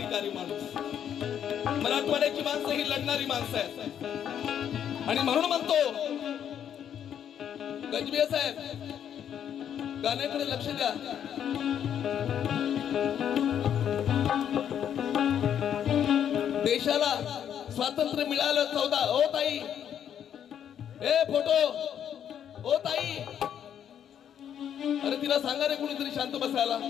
माणूस. मराठवाड्याची माणसं ही लढणारी माणसं आहेत. आणि म्हणून म्हणतो गजबे साहेब, गाण्याकडे लक्ष द्या. देशाला स्वातंत्र्य मिळालं 14. ओ ताई, ए फोटो, ओ ताई, अरे तिला सांगा रे कुणीतरी शांत बसायला.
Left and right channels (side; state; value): right; quieter; 9.2 dB